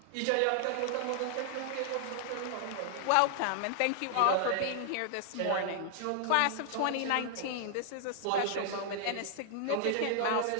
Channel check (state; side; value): different; both; correlation 0.00